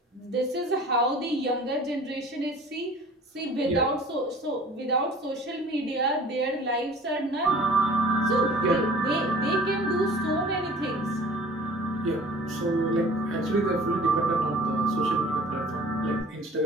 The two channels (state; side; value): normal; both; correlation 0.47